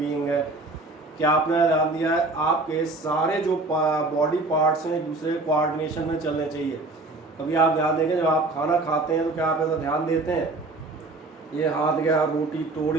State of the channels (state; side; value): quieter; left; 3.1 dB